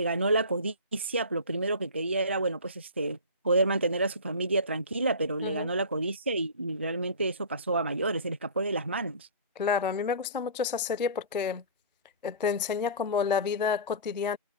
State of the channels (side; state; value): both; inverted; correlation -0.36